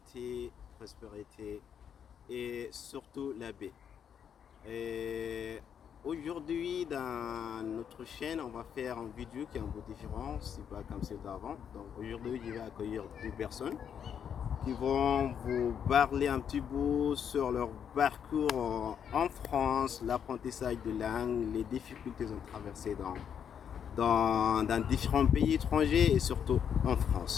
prospérité et surtout la paix. Et aujourd'hui, dans notre chaîne, on va faire une vidéo qui est un peu différente, c'est pas comme celle d'avant. Donc aujourd'hui, je vais accueillir deux personnes qui vont vous parler un petit peu sur leur parcours en France, l'apprentissage de langue, les difficultés qu'ils ont traversées dans différents pays étrangers et surtout en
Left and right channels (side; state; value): right; quieter; 8.1 dB